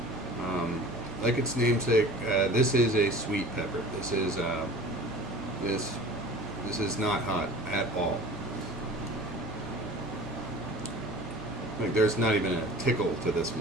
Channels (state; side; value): normal; both; correlation 0.42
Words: Like its namesake, this is a sweet pepper. This is not hot at all. Like, there's not even a tickle to this